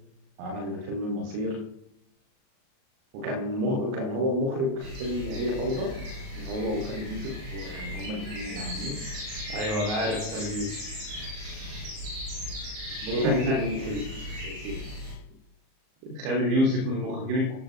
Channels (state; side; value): late; left; 38 ms